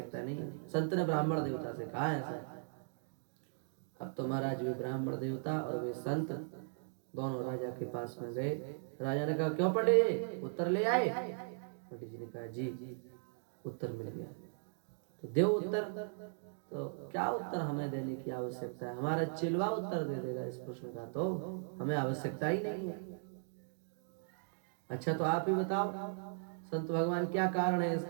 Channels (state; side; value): silent; left; digital silence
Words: नहीं है। संत ने ब्राह्मण देवता से कहा ऐसा। अब तो महाराज वे ब्राह्मण देवता और वे संत दोनों राजा के पास में गए। राजा ने कहा, क्यों पंडित जी, उत्तर ले आए? पंडित जी ने कहा, जी उत्तर मिल गया। तो देव उत्तर। तो क्या उत्तर हमें देने की आवश्यकता है? हमारा चिलवा उत्तर दे देगा इस प्रश्न का, तो हमें आवश्यकता ही नहीं है। अच्छा, तो आप ही बताओ संत भगवान, क्या कारण है